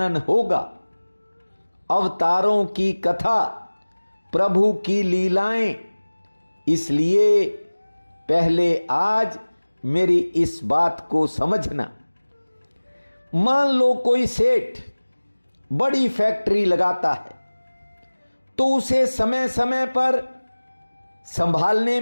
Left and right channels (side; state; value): both; inverted; correlation -1.00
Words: होगा। अवतारों की कथा, प्रभु की लीलाएं। इसलिए पहले आज मेरी इस बात को समझना। मान लो कोई सेठ बड़ी फैक्ट्री लगाता है तो उसे समय समय पर संभालने